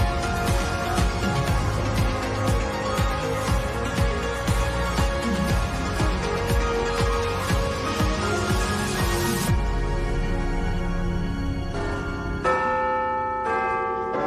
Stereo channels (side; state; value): both; identical; correlation 1.00